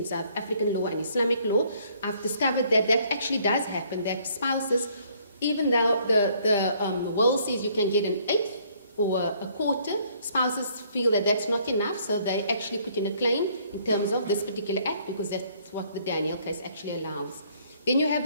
South African law and Islamic law, I've discovered that actually does happen, that spouses, even though the will says you can get an eighth or a quarter, spouses feel that that's not enough, so they actually put in a claim in terms of this particular act, because that's what the Daniel case actually allows. Then you have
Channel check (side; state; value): both; inverted; correlation -0.63